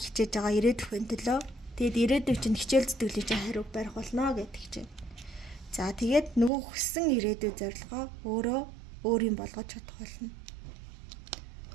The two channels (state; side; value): drops out; left; at 6.5 s